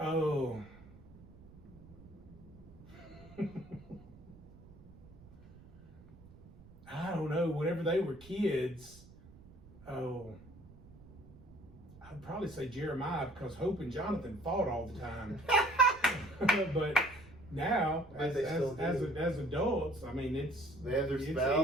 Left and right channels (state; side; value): noise; right; rumble, 21 dB below the sound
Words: Oh. I don't know. Whenever they were kids, I'd probably say Jeremiah, because Hope and Jonathan fought all the time. But now, But as adults, I mean, They have their